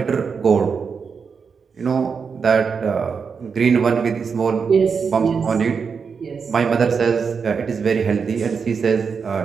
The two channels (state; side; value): quieter; left; 5.8 dB